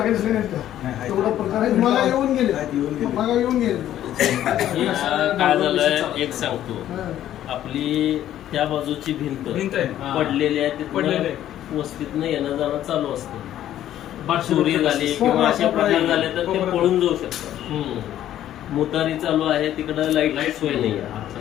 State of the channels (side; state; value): right; quieter; 12.0 dB